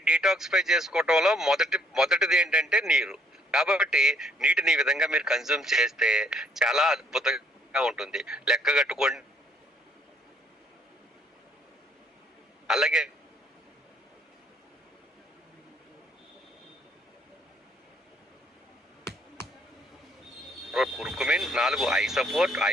డీటాక్సిఫై చేసుకోవటంలో మొదటిది ఏంటంటే నీరు. కాబట్టి నీటిని ఈ విధంగా మీరు కన్జ్యూమ్ చేస్తే చాలా అద్భుతంగా ఉంటుంది. లెక్క కట్టుకోండి. అలాగే curcumin, 4 I support,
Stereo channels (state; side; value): normal; both; correlation 0.65